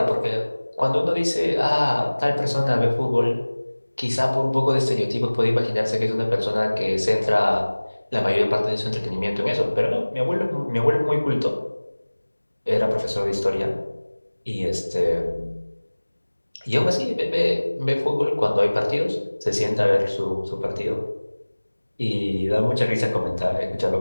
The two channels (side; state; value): both; inverted; correlation -1.00